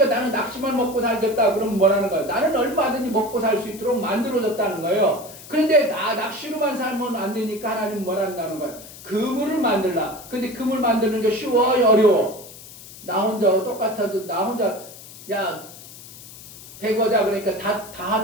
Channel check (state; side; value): noise; left; hiss, 17 dB below the sound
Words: 나는 낚시만 먹고 살겠다 그러면 뭐라는 거예요? 나는 얼마든지 먹고 살 수 있도록 만들어졌다는 거예요. 그런데 낚시로만 살면 안 되니까 하나님은 뭐라는 거예요? 그물을 만들라. 근데 그물 만드는 게 쉬워요? 어려워? 나 혼자 똑같아도 나 혼자 야 배거자 그러니까 다